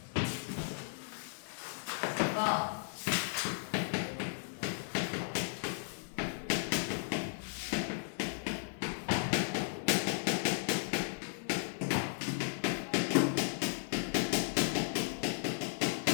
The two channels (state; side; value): silent; right; 54 dB below the other